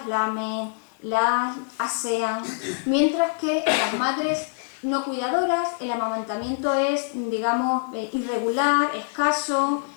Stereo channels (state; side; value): silent; right; 62 dB below the other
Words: lamen, las asean, mientras que las madres no cuidadoras el amamantamiento es, digamos, irregular, escaso,